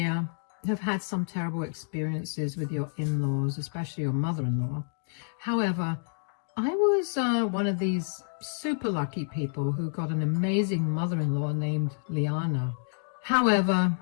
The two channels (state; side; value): silent; right; digital silence